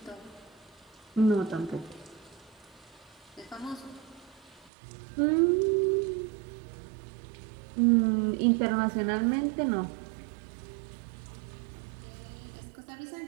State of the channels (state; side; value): drops out; left; at 4.7 s